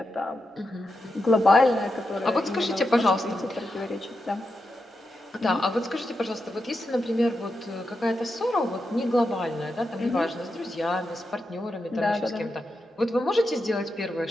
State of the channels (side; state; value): both; normal; correlation 0.87